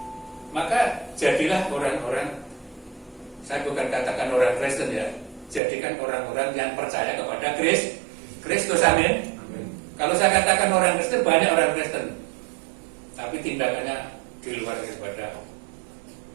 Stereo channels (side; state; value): left; drops out; at 5.6 s